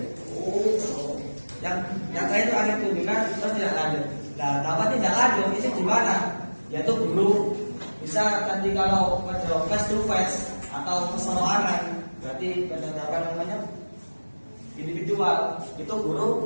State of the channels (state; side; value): inverted; both; correlation -1.00